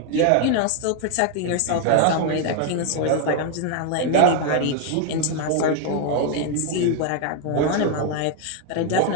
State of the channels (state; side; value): different; both; correlation 0.01